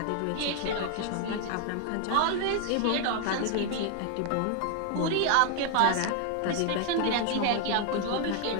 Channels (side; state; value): both; different; correlation 0.00